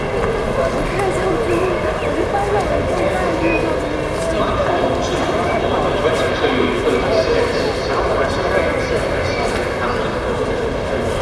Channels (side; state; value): both; identical; correlation 1.00